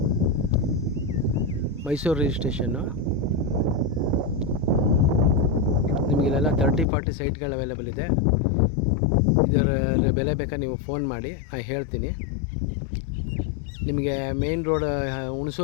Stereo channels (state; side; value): drops out; right; at 6.9 s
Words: ಮೈಸೂರು ರಿಜಿಸ್ಟ್ರೇಷನ್ನು. ನಿಮಗಿಲ್ಲೆಲ್ಲ 30-40 ಸೈಟ್ಗಳು ಅವೈಲೇಬಲ್ ಇದೆ. ಇದರ ಬೆಲೆ ಬೇಕಾದ್ರೆ ನೀವು ಫೋನ್ ಮಾಡಿ, ನಾನು ಹೇಳ್ತೀನಿ. ನಿಮಗೆ ಮೇನ್ ರೋಡ್